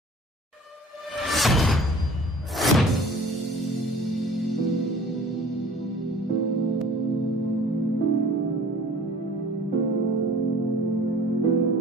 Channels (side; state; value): both; normal; correlation 0.46